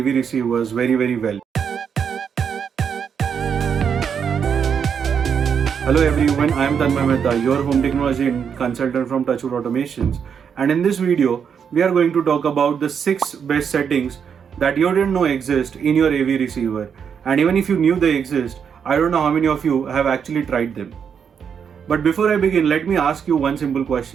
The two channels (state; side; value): quieter; left; 7.2 dB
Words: receivers very well? Hello everyone, I am Tanmay Mehta, your home technology consultant from Touchwood Automations, and in this video we are going to talk about the 6 best settings that you didn't know exist in your AV receiver, and even if you knew they exist, I don't know how many of you have actually tried them. But before I begin, let me ask you one simple